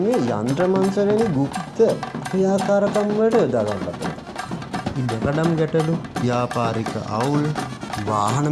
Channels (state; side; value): identical; both; correlation 1.00